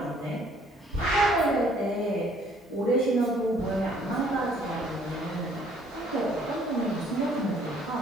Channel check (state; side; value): normal; both; correlation 0.60